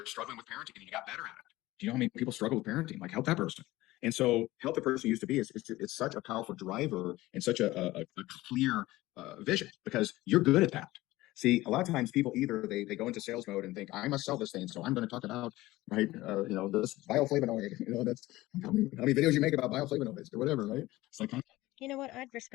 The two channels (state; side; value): quieter; right; 18.0 dB